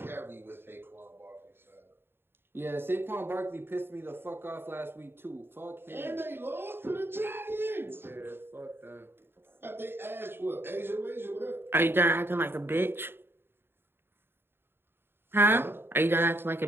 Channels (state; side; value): late; left; 0.11 ms